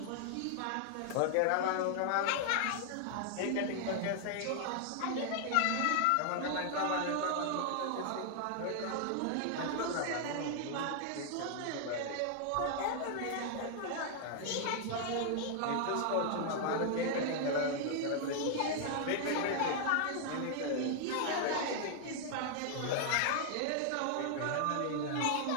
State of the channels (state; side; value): different; both; correlation 0.00